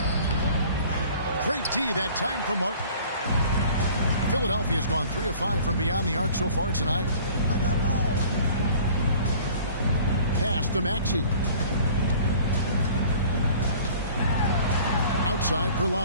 Great D that time from Martin. Philadelphia's gone 3 of 5 from beyond the arc so far tonight. Pass to Maxey. Outside for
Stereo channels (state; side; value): inverted; both; correlation -0.49